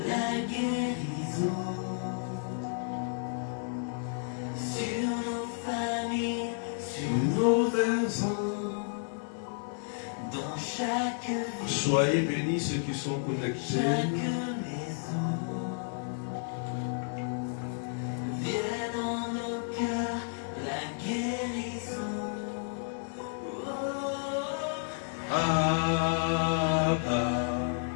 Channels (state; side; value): silent; right; 57 dB below the other